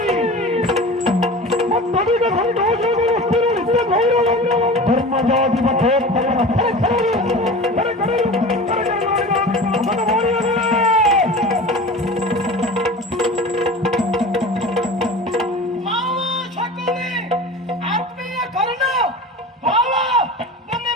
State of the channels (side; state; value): both; normal; correlation 0.35